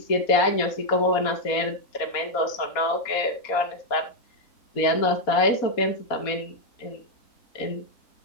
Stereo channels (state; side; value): late; right; 4.2 ms